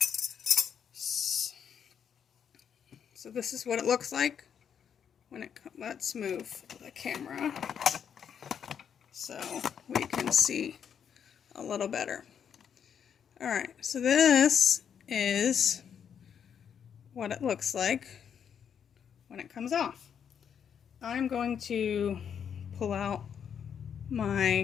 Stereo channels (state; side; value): quieter; right; 7.9 dB